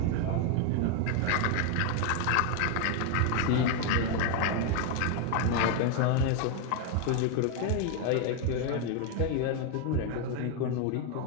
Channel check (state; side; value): different; both; correlation 0.01